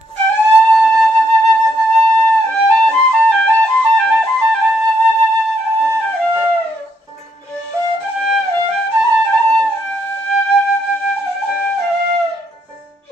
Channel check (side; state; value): both; normal; correlation 0.74